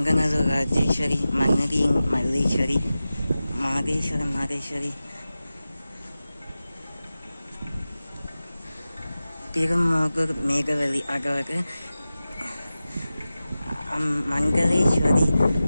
ராஜேஸ்வரி, மன்னதியின் மல்லீஸ்வரி, மாதேஸ்வரி, திருமோகூர் மேகவலி அதாவது மங்களேஸ்வரி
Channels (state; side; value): inverted; both; correlation -0.95